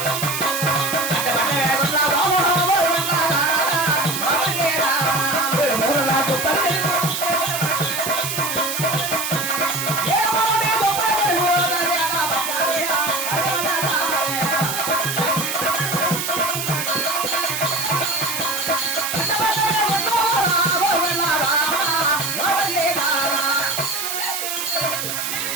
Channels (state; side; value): noise; right; hiss, 3 dB below the sound